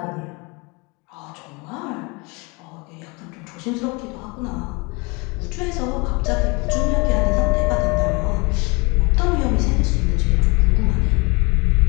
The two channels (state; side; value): quieter; right; 28.1 dB